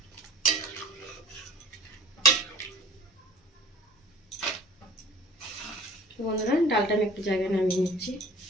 বন্ধুরা, ডালটা আমি একটু জায়গায় নামিয়ে নিচ্ছি।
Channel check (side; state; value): both; normal; correlation 0.47